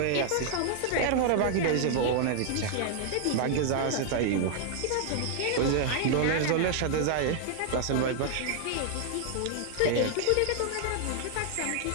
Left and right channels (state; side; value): different; both; correlation -0.01